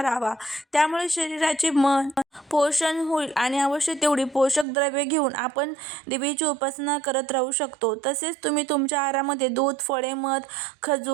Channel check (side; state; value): left; drops out; at 4.7 s